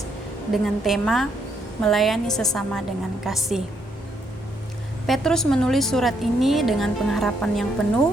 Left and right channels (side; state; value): both; normal; correlation 0.74